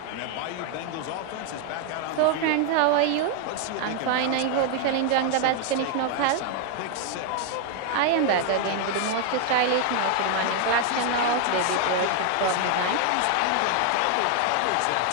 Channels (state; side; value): different; both; correlation 0.00